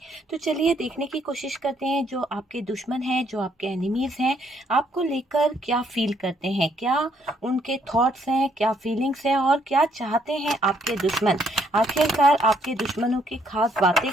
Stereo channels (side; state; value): both; normal; correlation 0.69